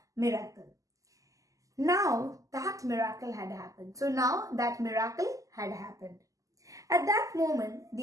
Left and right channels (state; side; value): late; left; 0.16 ms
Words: miracle. Now, that miracle had happened. At that moment,